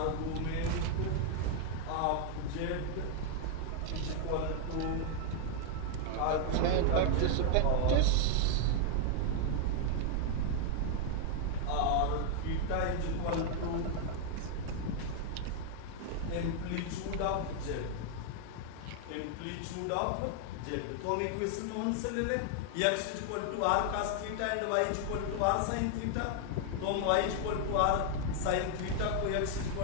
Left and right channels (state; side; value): different; both; correlation 0.00